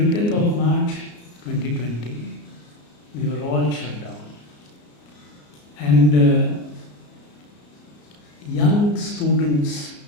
of March 2020, we were all shut down. And young students,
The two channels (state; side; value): late; right; 34 ms